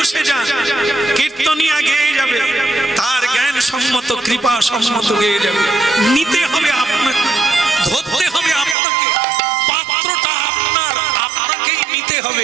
যান, কীর্তনিয়া গেয়ে যাবে, তার জ্ঞান সম্মত কৃপা সম্মত হয়ে যাবে। নিতে হবে আপনাকে, ধরতে হবে আপনাকে, পাত্রটা আপনার, আপনাকেই নিতে হবে।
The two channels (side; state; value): left; drops out; at 8.8 s